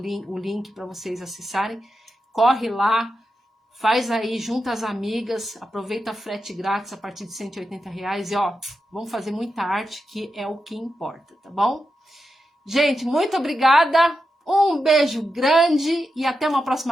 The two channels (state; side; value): normal; both; correlation 0.88